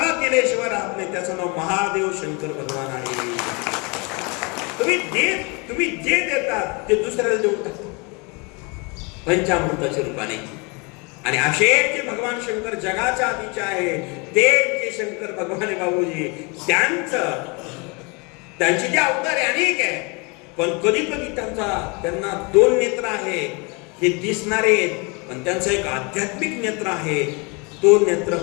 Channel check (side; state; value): right; quieter; 30.2 dB